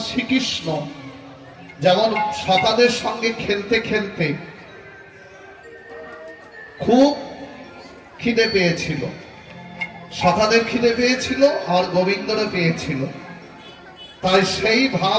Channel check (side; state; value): both; identical; correlation 1.00